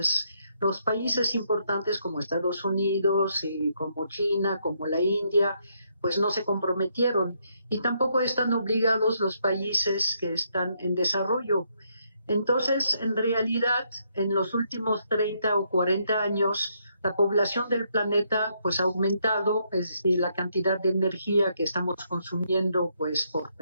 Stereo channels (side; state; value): both; inverted; correlation -0.75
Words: Los países importantes como Estados Unidos y como China, como la India, pues no se comprometieron, y tampoco están obligados los países que están en desarrollo. Entonces, en realidad, en los últimos 30 o 40 años, la población del planeta pues ha aumentado, es decir, la cantidad de energía que estamos consumiendo pues por